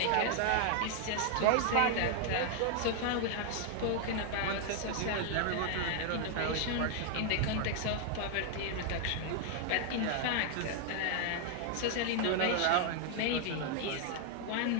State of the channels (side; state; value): both; different; correlation 0.00